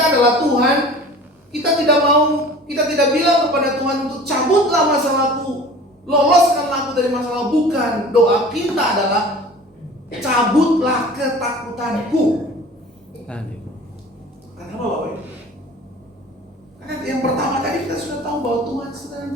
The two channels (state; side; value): normal; both; correlation 0.43